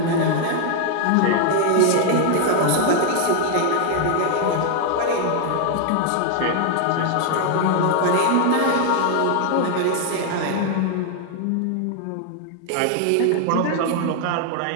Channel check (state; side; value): different; both; correlation 0.00